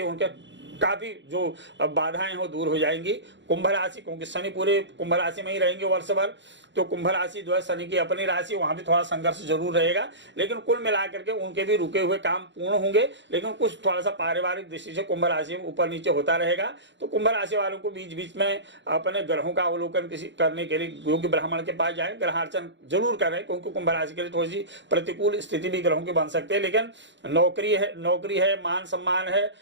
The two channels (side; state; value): left; late; 0.53 ms